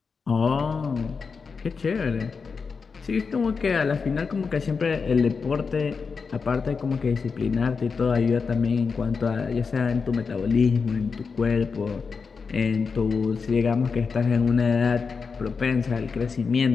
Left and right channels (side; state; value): right; quieter; 5.2 dB